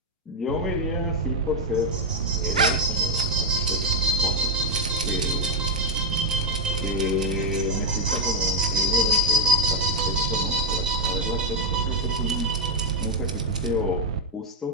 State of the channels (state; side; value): normal; both; correlation 0.01